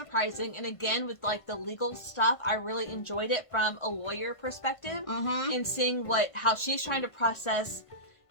And again, with like the legal stuff, I really enjoyed it from a lawyer perspective Mm-hmm. and seeing how she's trying to process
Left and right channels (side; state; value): right; late; 1.5 ms